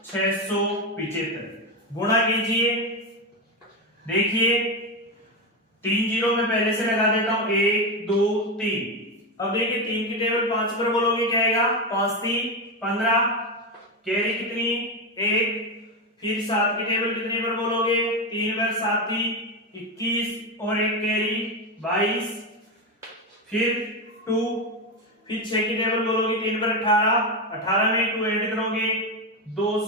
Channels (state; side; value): normal; both; correlation 0.13